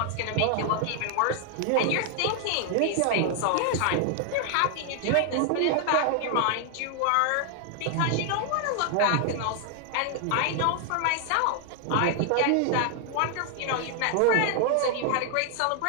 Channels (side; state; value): both; different; correlation 0.00